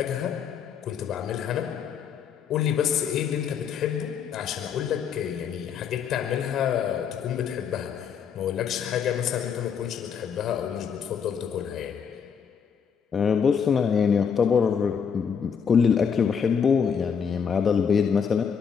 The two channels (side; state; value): right; quieter; 7.0 dB